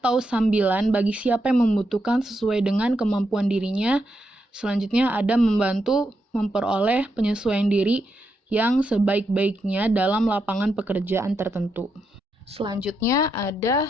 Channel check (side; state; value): both; normal; correlation 0.83